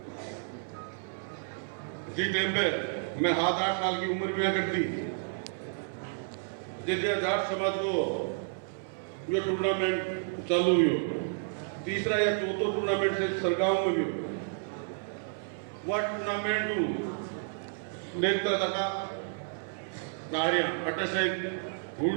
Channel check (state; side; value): silent; left; 57 dB below the other